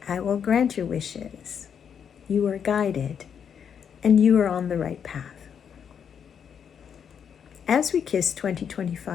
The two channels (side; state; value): right; quieter; 7.7 dB